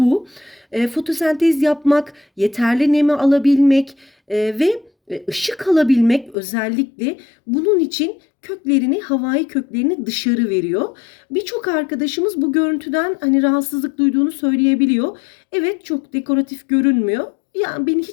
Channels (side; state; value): right; drops out; at 6.4 s